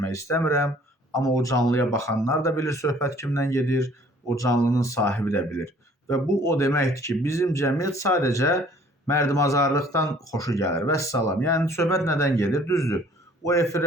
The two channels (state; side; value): normal; both; correlation 0.55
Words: istəmirəm, amma o canlıya baxanlar da bilir söhbət kimdən gedir, o canlının sahibi də bilir. Və bu o deməkdir ki, bizim cəmiyyət sadəcə mərdimazarlıqdan xoşu gəlir. Vəssalam. Yəni söhbət nədən gedir? Düzdür. O